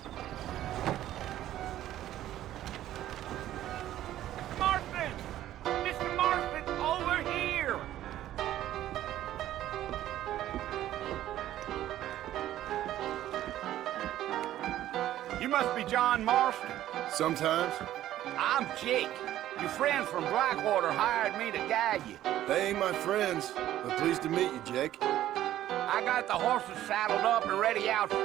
Marston! Mr. Marston, over here! You must be John Marston. Sometimes. I'm Jake. Your friends from Blackwater hired me to guide you. They ain't my friends, but pleased to meet you, Jake. I got the horses saddled up and ready out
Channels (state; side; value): quieter; left; 13.1 dB